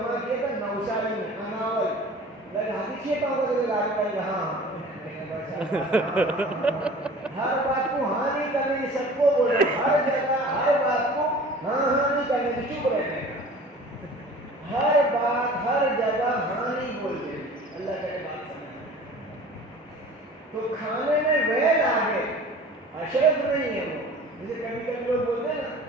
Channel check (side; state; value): both; normal; correlation 0.44